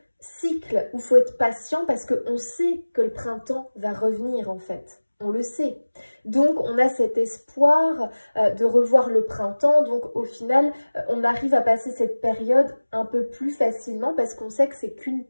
cycle où il faut être patient parce qu'on sait que le printemps va revenir en fait. On le sait. Donc, on a cet espoir de revoir le printemps. Donc, au final, on arrive à passer cette période un peu plus facilement parce qu'on sait que c'est qu'une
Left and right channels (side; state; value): both; inverted; correlation -1.00